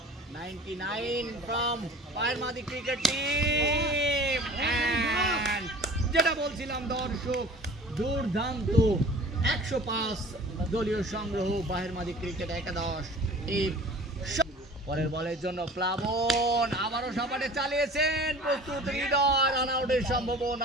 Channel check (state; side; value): normal; both; correlation 0.44